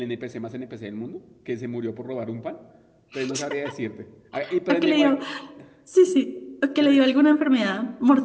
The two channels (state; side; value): identical; both; correlation 1.00